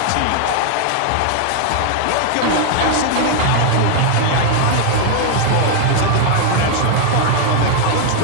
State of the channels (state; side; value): different; both; correlation 0.00